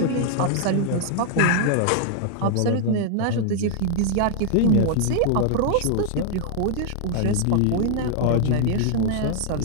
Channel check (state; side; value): different; both; correlation 0.00